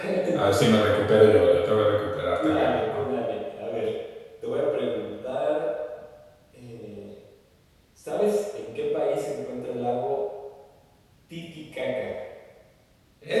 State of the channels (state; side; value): identical; both; correlation 1.00